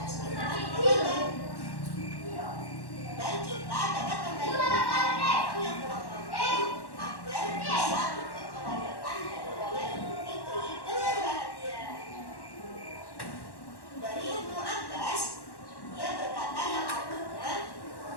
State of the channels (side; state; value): right; late; 1.1 ms